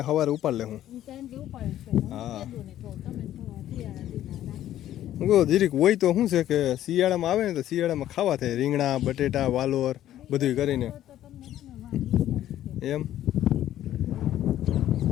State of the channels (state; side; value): quieter; right; 12.5 dB